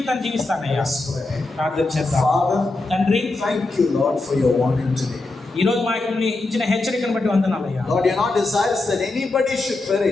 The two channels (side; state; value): right; quieter; 3.1 dB